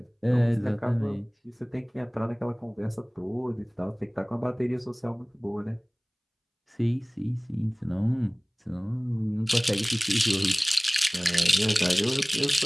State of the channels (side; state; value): both; identical; correlation 1.00